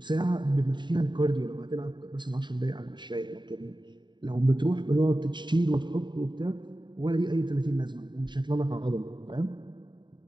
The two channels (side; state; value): left; late; 0.22 ms